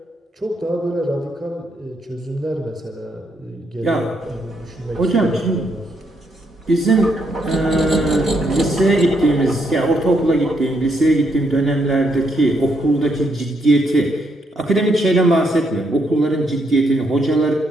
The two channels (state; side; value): normal; both; correlation 0.76